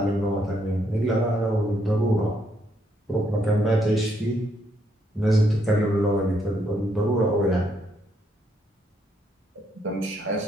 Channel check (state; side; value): normal; both; correlation 0.74